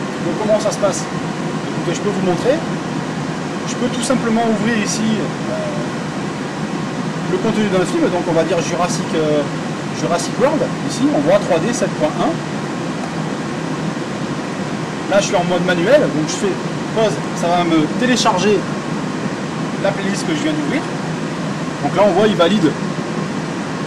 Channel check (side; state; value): both; identical; correlation 1.00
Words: donc comment ça se passe? Écoutez, je peux vous montrer. Je peux tout simplement ouvrir ici le contenu d'un film, donc on va dire Jurassic World, ici on voit 3D 7.1. Là je suis en mode manuel, donc je fais pause, ça va me télécharger la playlist que je viens d'ouvrir. Donc là on voit il valide